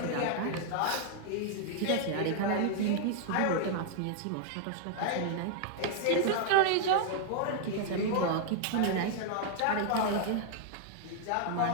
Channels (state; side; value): different; both; correlation -0.01